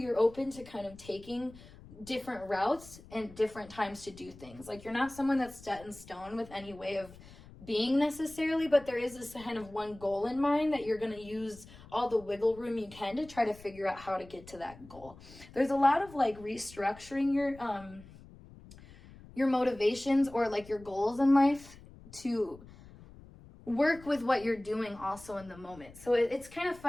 open to kind of taking different routes and different times to do things. Like you're not someone that's set in stone with any way of being necessarily, but there is this kind of one goal in mind that you're going to use all the wiggle room you can to try to figure out how to get to that goal. There's a lot of like restructuring your motivations or like your goals in life to work with what you're doing also in the moment. So it's kind of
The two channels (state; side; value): noise; left; rumble, 20 dB below the sound